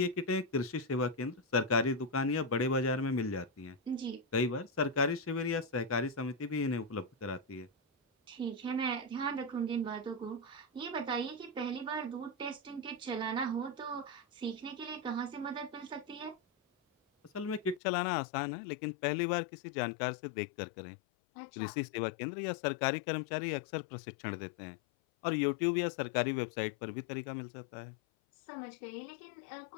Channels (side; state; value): right; drops out; at 17.8 s